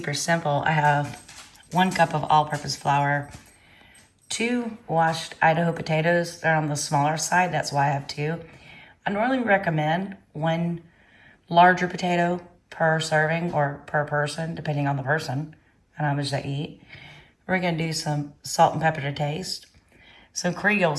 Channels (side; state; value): both; identical; correlation 1.00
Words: simple. I have 1 cup of all-purpose flour, 2 washed Idaho potatoes. They're on the smaller side, that's why I have 2. I normally recommend 1 larger potato per serving or per person, depending on the person and how much they eat. We're gonna do some salt and pepper to taste, some Creole